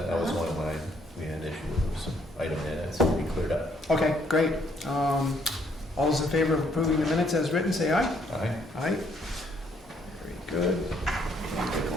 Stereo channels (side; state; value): both; normal; correlation 0.68